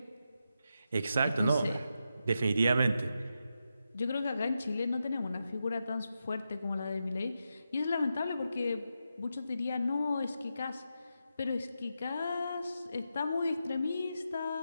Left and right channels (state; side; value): inverted; both; correlation -0.87